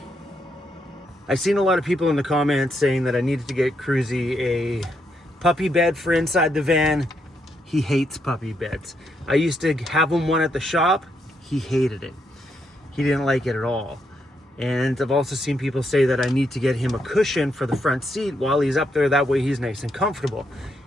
I've seen a lot of people in the comments saying that I needed to get Cruzy a puppy bed for inside the van. He hates puppy beds. I used to have him one at the shop. He hated it. He didn't like it at all. And I've also seen people say that I need to get him a cushion for the front seat while he's up there. That way he's nice and comfortable.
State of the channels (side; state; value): both; normal; correlation 0.78